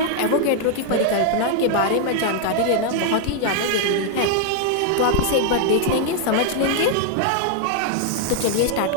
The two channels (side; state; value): both; different; correlation 0.00